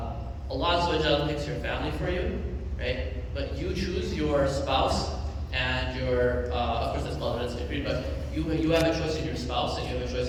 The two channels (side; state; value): both; identical; correlation 1.00